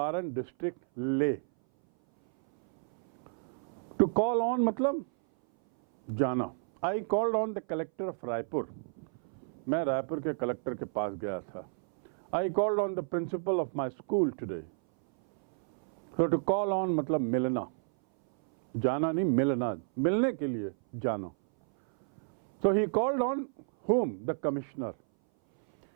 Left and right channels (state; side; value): silent; left; 57 dB below the other